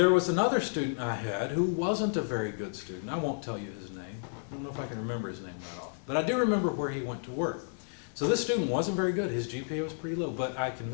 was another student I had who wasn't a very good student. I won't tell you his name. I don't know if I can remember his name that off. But I do remember where he went to work. So this student wasn't very good. His GPA was pretty low. But I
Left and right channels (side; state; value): right; silent; digital silence